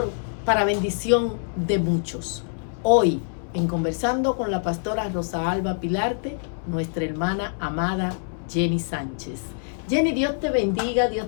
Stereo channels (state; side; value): silent; right; 62 dB below the other